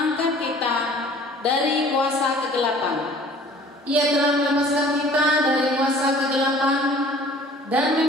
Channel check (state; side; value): normal; both; correlation 0.50